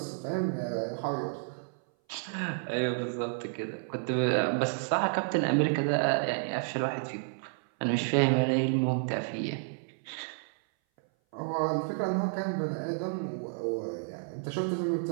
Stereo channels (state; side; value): silent; left; 57 dB below the other